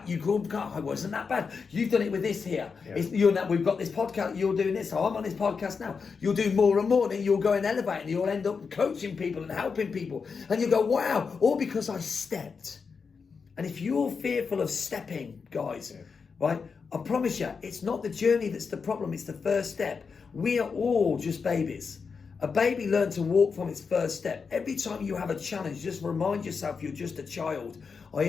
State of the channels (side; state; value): right; quieter; 5.4 dB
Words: you go, God, it wasn't that bad. You've done it with this here. Yeah. We've got this podcast, you're doing this, so I'm on this podcast now. You'll do more and more, then you'll go and elevate, and you'll end up coaching people and helping people. And you go, wow, all because I stepped. And if you're fearful of stepping, guys, right? I promise you, it's not the journey that's the problem, it's the first step. We are all just babies. A baby learns to walk from its first step. Every time you have a challenge, just remind yourself you're just a child.